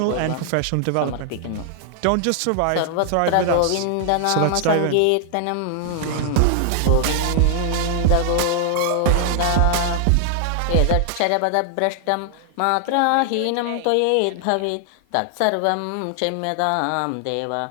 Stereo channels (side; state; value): both; different; correlation 0.00